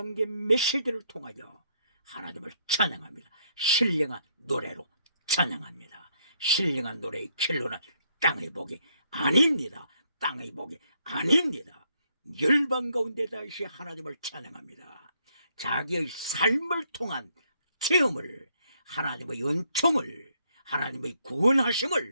메시지를 통하여 하나님을 찬양합니다. 신령한 노래로 찬양합니다. 신령한 노래의 길로는 땅의 복이 아닙니다. 땅의 복이 아닙니다. 열방 가운데 다시 하나님을 찬양합니다. 자기의 삶을 통한 체험을, 하나님의 은총을, 하나님의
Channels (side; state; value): both; inverted; correlation -0.71